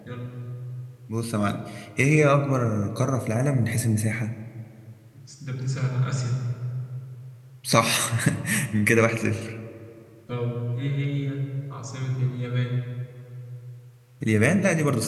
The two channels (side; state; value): both; identical; correlation 1.00